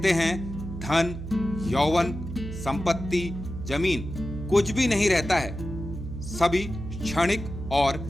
हैं धन, यौवन, संपत्ति, जमीन कुछ भी नहीं रहता है। सभी क्षणिक और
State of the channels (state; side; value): noise; right; hum, 8 dB below the sound